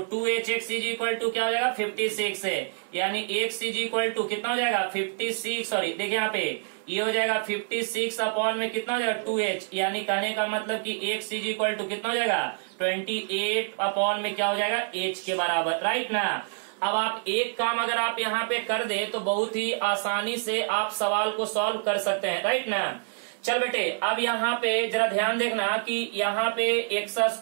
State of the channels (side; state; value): left; silent; digital silence